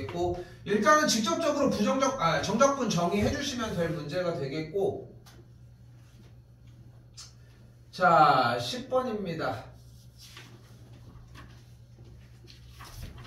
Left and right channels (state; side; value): identical; both; correlation 1.00